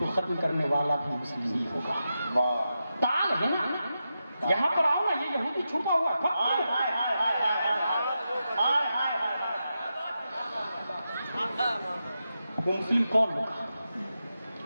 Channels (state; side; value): inverted; both; correlation -0.89